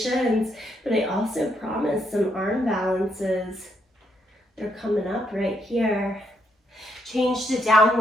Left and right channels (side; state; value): both; normal; correlation 0.76